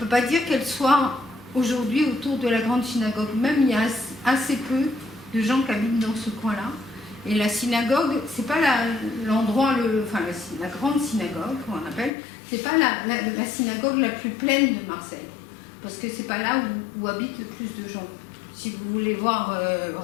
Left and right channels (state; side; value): drops out; right; at 12.1 s